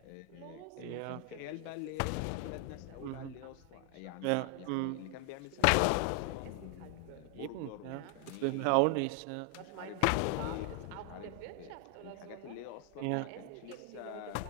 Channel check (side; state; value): both; different; correlation 0.00